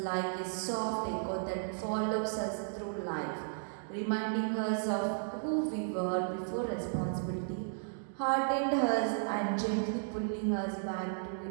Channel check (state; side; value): silent; left; digital silence